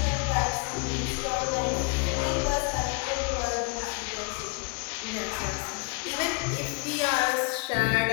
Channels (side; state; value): right; quieter; 32.1 dB